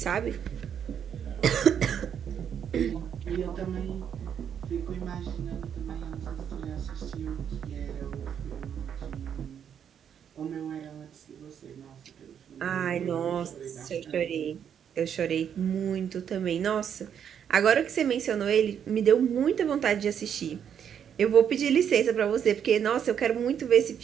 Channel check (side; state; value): left; quieter; 8.4 dB